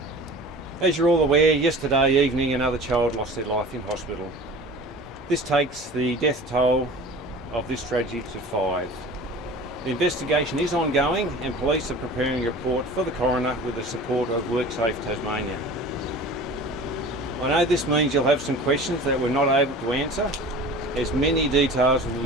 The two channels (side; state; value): both; normal; correlation 0.39